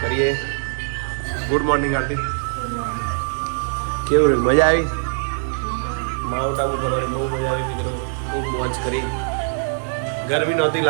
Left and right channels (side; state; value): left; silent; 62 dB below the other